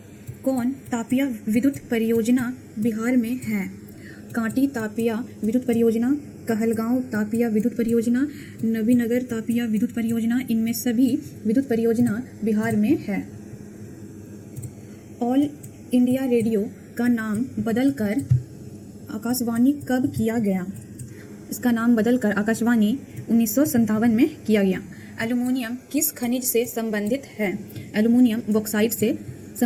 कौन तापिया विद्युत परियोजना बिहार में है? कांटी तापिया विद्युत परियोजना, कहलगांव तापिया विद्युत परियोजना, नबीनगर तापिया विद्युत परियोजना, इनमें सभी विद्युत परियोजना बिहार में है। ऑल इंडिया रेडियो का नाम बदलकर आकाशवाणी कब किया गया? इसका नाम बदलकर आकाशवाणी 1957 में किया गया। एल्युमिनियम किस खनिज से संबंधित है? एल्युमिनियम बॉक्साइट से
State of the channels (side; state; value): both; identical; correlation 1.00